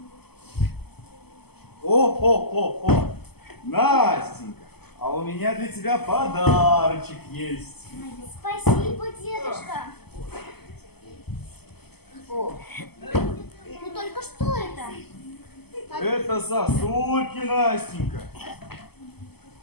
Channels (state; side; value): late; right; 0.97 ms